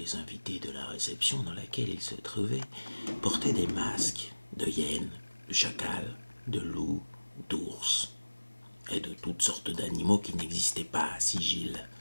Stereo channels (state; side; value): inverted; both; correlation -1.00